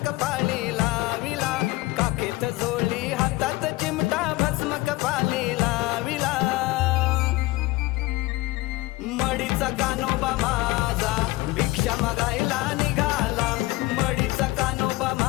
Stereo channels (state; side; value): quieter; right; 20.1 dB